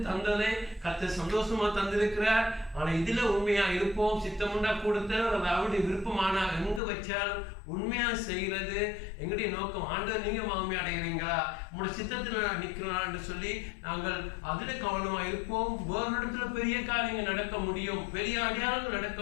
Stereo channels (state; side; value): drops out; right; at 6.8 s